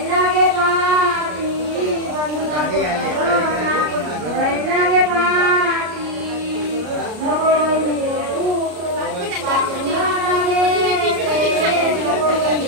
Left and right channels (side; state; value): left; late; 33 ms